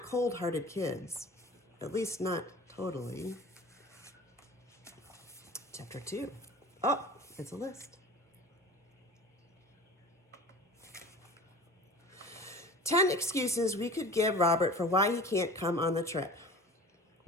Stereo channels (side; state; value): both; normal; correlation 0.39